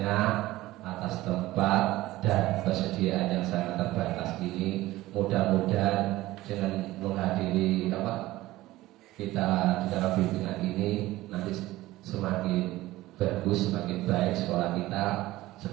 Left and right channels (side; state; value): left; quieter; 17.2 dB